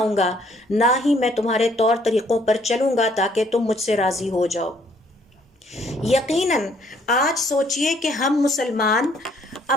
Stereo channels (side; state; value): both; normal; correlation 0.64